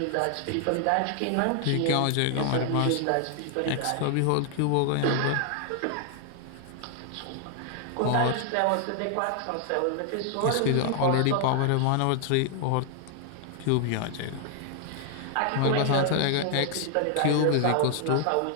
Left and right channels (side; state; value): both; different; correlation 0.00